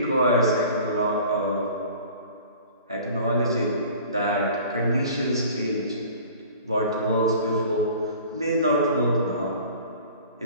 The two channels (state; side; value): inverted; both; correlation -0.45